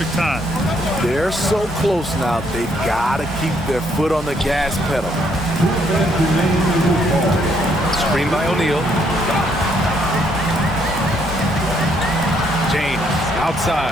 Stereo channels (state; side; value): normal; both; correlation 0.70